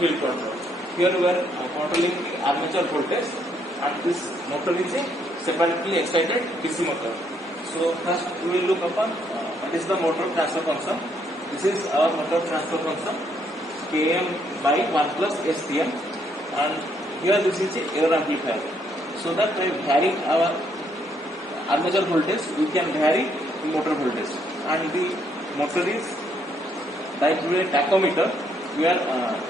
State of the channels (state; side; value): normal; both; correlation 0.71